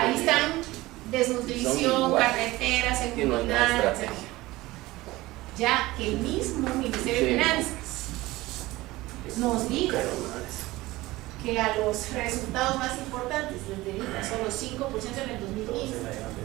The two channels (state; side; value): quieter; left; 19.0 dB